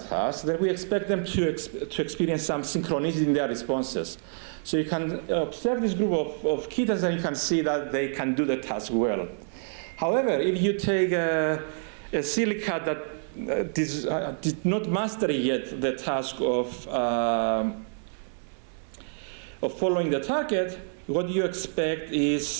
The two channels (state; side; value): silent; left; 60 dB below the other